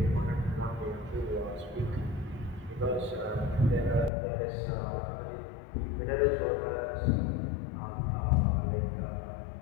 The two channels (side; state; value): right; drops out; at 4.1 s